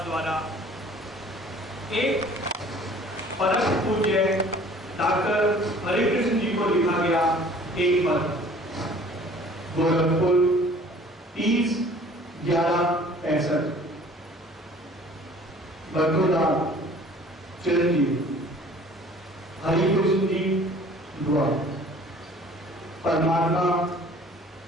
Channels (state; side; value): normal; both; correlation 0.51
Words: द्वारा एक परम पूज्य डॉक्टर हरे कृष्ण जी को लिखा गया एक पत्र, गोरखपुर 30/11/65। बड़ौदा चिरंजीव हरिकृष्ण जी दुआ। परमात्मा